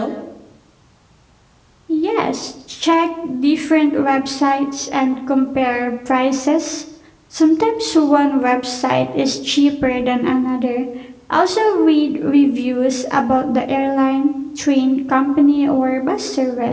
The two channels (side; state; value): both; identical; correlation 1.00